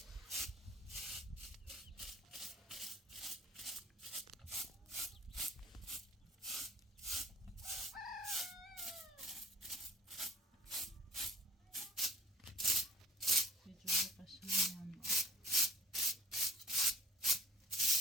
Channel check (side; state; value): both; normal; correlation 0.47